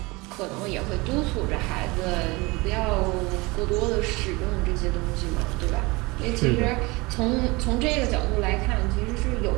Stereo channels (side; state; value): left; quieter; 24.1 dB